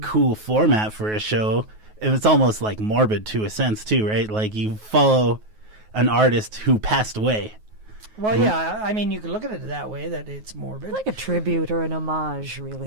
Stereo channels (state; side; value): late; left; 9.4 ms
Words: cool format for a show. And it's almost like morbid to a sense, too, right? Like you follow an artist who passed away. Well, yeah. I mean, you could look at it that way, that it's morbid. Like a tribute or an homage,